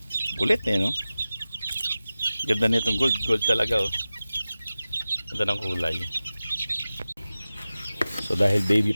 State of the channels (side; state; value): both; inverted; correlation -0.96